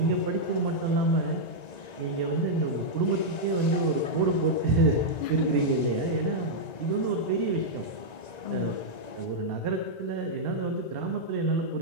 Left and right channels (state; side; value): late; right; 1.9 ms